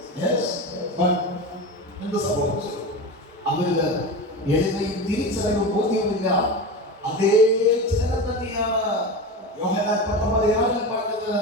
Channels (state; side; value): normal; both; correlation 0.25